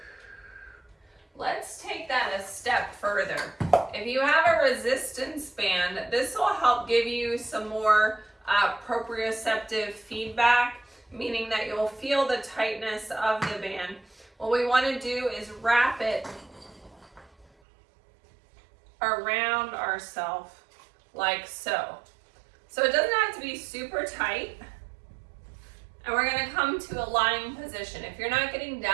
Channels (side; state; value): left; drops out; at 17.4 s